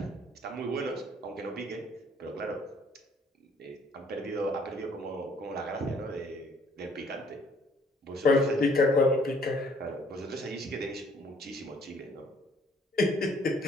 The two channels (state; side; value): normal; both; correlation 0.61